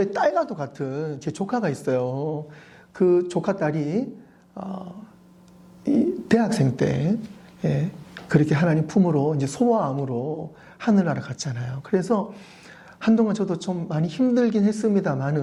딸과도 같은 제 조카가 있어요. 그 조카 딸이 대학생 때 그렇게 하나님 품으로 이제 소아암으로 하늘나라 갔잖아요. 그래서 한동안 저도 좀 많이 힘들긴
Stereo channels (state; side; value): identical; both; correlation 1.00